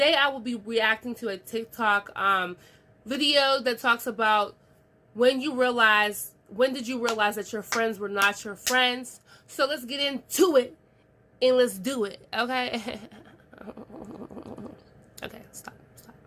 I will be reacting to a TikTok video that talks about when did you realize that your friends were not your friends. So let's get into it and let's do it, okay? Okay, stop.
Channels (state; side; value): identical; both; correlation 1.00